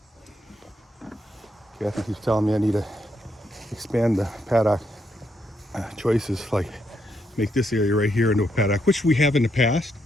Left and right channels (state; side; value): normal; both; correlation 0.78